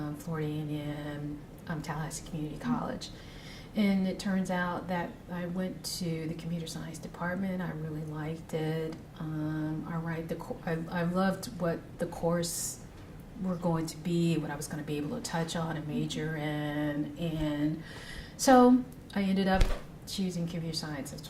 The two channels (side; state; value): both; identical; correlation 1.00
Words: Florida A&M, Tallahassee Community College. And it turns out that I went to the computer science department. I really liked it. I loved what the course were going to be, what I was going to be able to touch on and major in. And so I ended up choosing computer science, that's